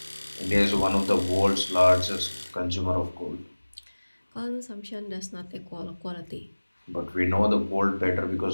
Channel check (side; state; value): both; inverted; correlation -1.00